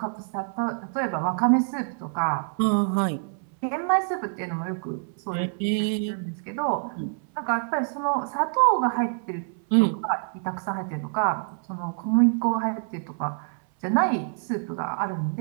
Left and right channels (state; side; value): silent; left; 61 dB below the other